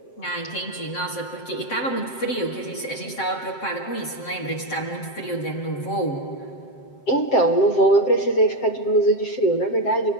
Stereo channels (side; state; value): right; late; 7.7 ms